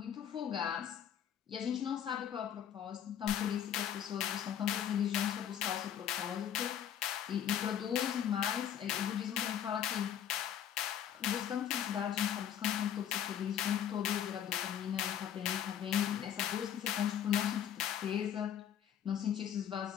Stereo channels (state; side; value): quieter; right; 9.7 dB